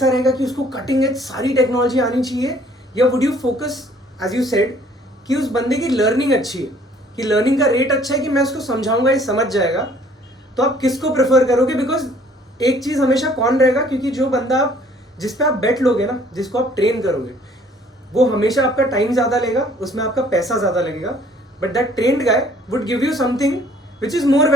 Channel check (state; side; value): normal; both; correlation 0.58